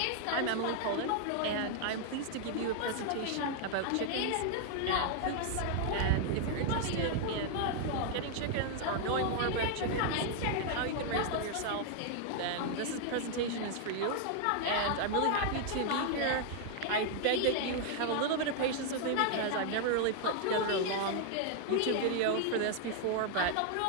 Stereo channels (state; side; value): different; both; correlation 0.00